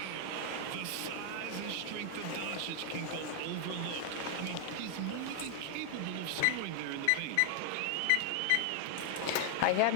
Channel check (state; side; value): different; both; correlation 0.00